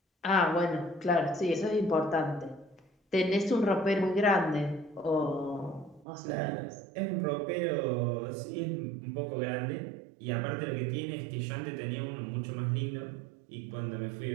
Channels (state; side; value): drops out; left; at 6.1 s